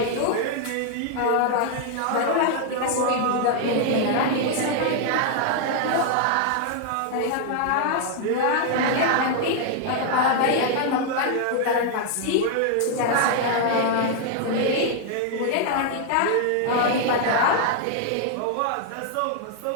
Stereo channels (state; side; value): different; both; correlation 0.00